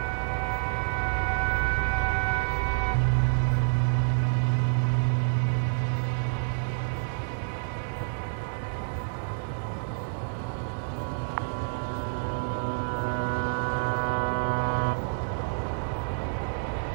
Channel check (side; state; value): left; silent; 57 dB below the other